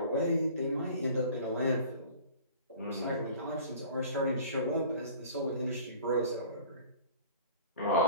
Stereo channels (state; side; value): inverted; both; correlation -0.45